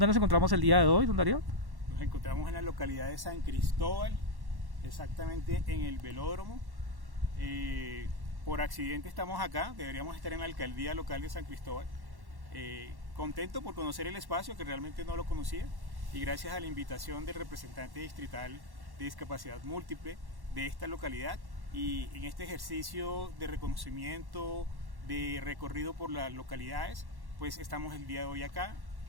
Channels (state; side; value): late; left; 1.1 ms